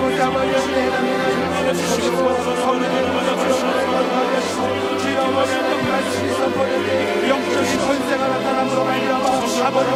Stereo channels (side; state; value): both; identical; correlation 1.00